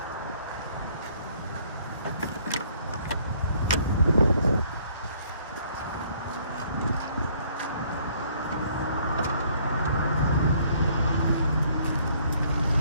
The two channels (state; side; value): inverted; both; correlation -0.63